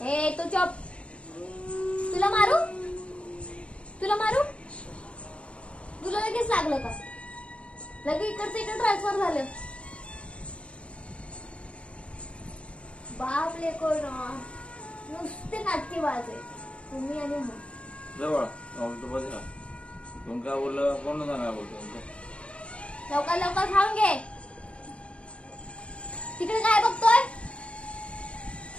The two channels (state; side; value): late; right; 0.061 ms